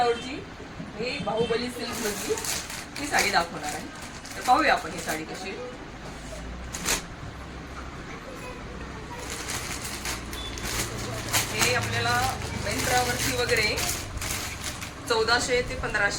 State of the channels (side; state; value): both; identical; correlation 1.00